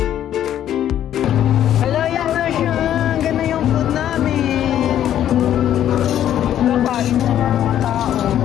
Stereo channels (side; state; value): right; quieter; 11.0 dB